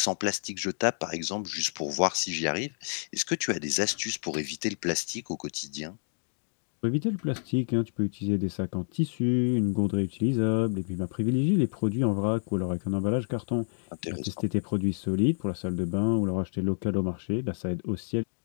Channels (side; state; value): right; silent; digital silence